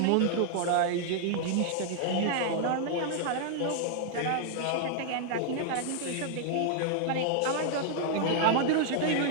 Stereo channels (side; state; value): both; different; correlation 0.00